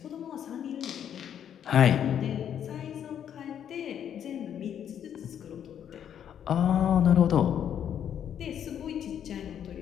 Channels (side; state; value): right; quieter; 9.2 dB